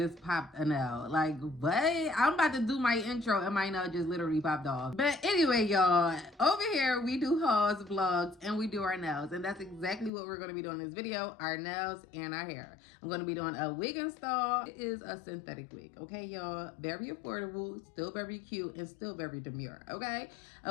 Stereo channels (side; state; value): right; drops out; at 10.1 s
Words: popped a nail. Like, what? I'm about to do my intro and my nail just literally popped off. But anyway, y'all, over here we do hauls, vlogs, and we do our nails. And that's exactly what we're going to be doing in this video, our nails and our hair. I'm going to be doing a wig install. It is a synthetic wig, okay, y'all? Very affordable, still very cute, and still very demure, okay?